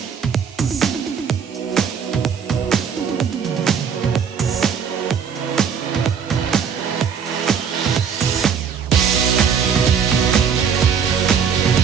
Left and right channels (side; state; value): left; quieter; 7.0 dB